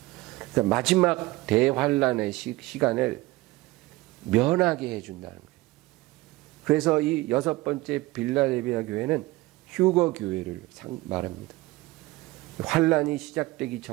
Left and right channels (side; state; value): left; quieter; 19.9 dB